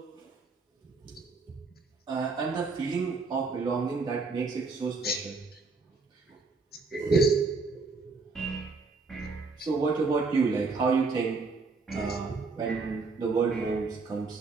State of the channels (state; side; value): quieter; left; 4.2 dB